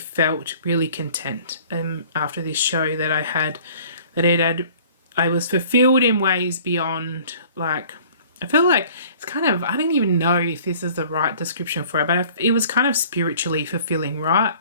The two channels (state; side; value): inverted; both; correlation -0.51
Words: felt really content after this show that I had, I was fulfilled in ways beyond, like, I feel like it's kind of, I don't even know if this is the right description for it, but it was kind of spiritually fulfilling, right?